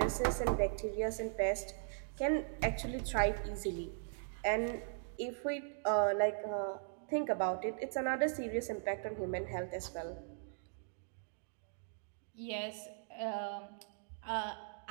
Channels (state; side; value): silent; left; digital silence